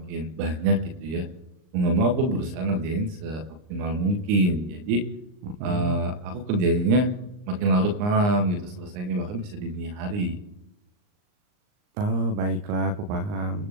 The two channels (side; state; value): left; late; 39 ms